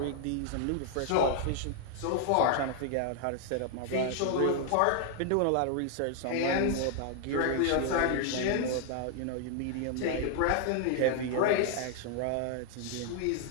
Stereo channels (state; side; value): different; both; correlation 0.00